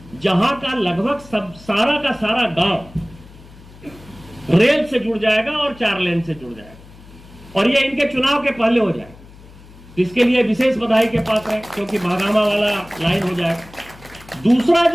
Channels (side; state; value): left; noise; hum, 21 dB below the sound